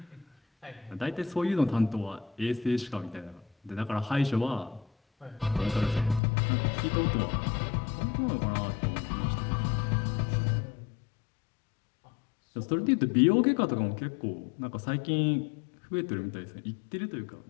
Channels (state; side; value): drops out; right; at 6.2 s